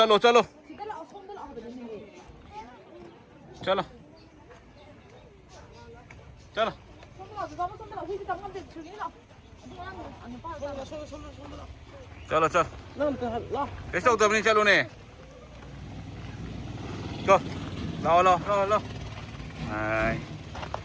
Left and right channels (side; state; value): both; identical; correlation 1.00